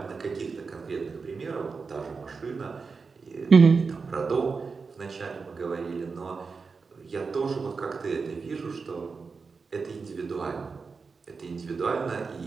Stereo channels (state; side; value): quieter; left; 4.8 dB